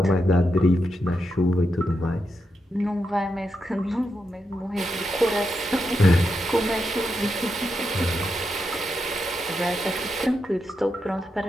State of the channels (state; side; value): normal; both; correlation 0.85